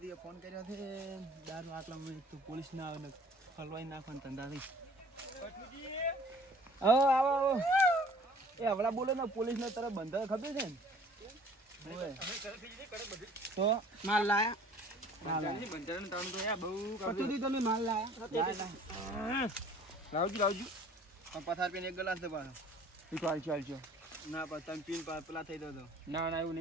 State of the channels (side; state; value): both; normal; correlation 0.52